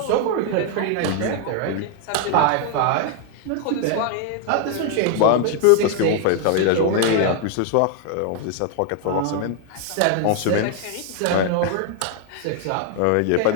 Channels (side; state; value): both; different; correlation 0.00